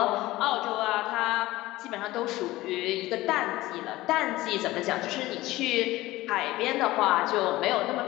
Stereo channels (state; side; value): quieter; right; 17.9 dB